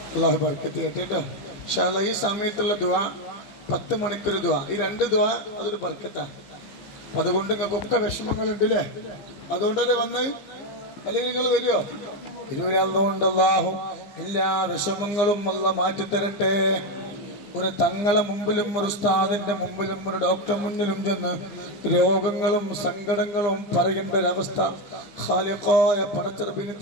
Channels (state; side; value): late; right; 15 ms